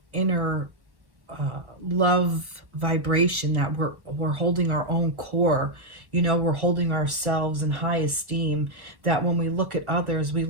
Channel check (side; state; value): left; late; 1.1 ms